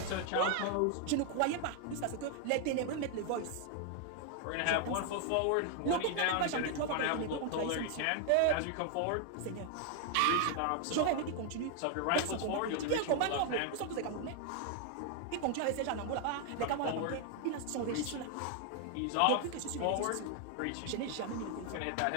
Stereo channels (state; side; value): different; both; correlation 0.00